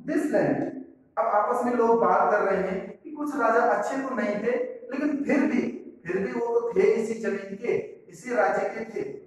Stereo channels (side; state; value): both; identical; correlation 1.00